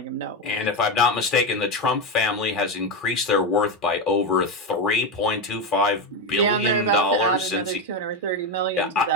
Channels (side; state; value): both; normal; correlation 0.12